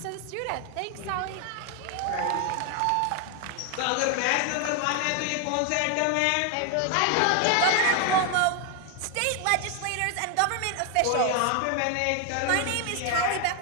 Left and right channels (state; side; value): different; both; correlation 0.01